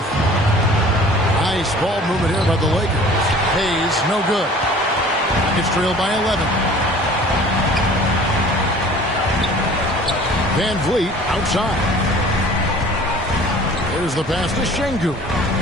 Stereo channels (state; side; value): normal; both; correlation 0.47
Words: Nice ball movement here by the Lakers. Hayes, no good. Rockets trail by 11. Van Vliet outside. There's the pass to Şengün.